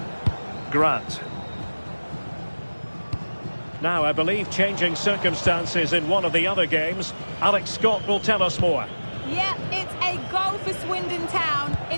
Grant. Now, I believe changing circumstances in one of the other games. Alex Scott will tell us more. Yeah, it's a goal for Swindon Town.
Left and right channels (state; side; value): inverted; both; correlation -1.00